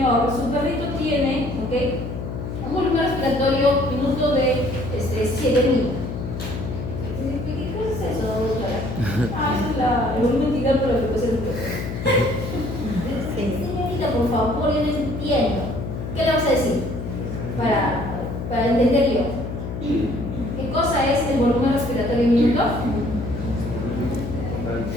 su perrito tiene, ¿ok?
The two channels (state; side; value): noise; left; hum, 6 dB below the sound